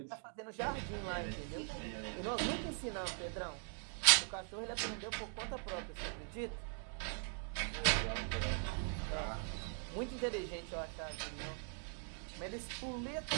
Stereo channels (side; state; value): left; silent; 50 dB below the other